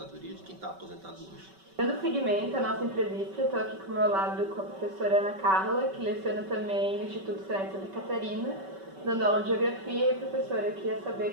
de quem está aposentado hoje. Dando seguimento à nossa entrevista, estou aqui com o meu lado com a professora Ana Carla, que leciona também no Instituto Senai de Santa Catarina, dando aula de Geografia. E, professora, eu queria saber,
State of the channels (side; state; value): left; late; 5.2 ms